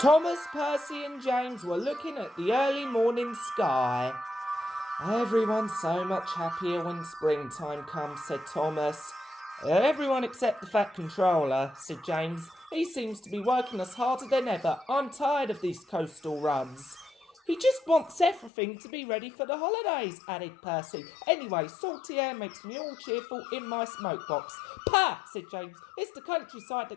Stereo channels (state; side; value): drops out; right; at 18.5 s